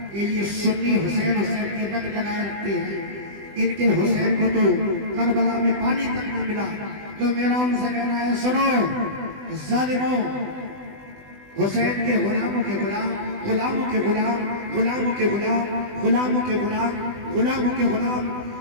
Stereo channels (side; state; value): left; late; 20 ms